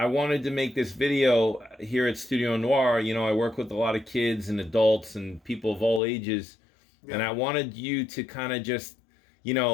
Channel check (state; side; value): drops out; right; at 6.0 s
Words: wanted to make this video here at Studio Noir. I work with a lot of kids and adults and people of all ages. Yeah. And I wanted you to kind of just,